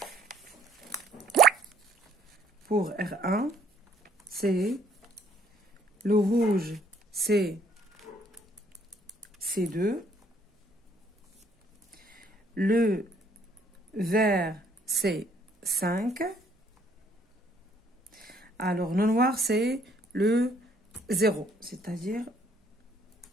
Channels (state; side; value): normal; both; correlation 0.63